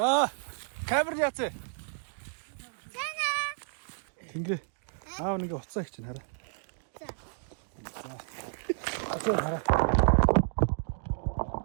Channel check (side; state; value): left; silent; digital silence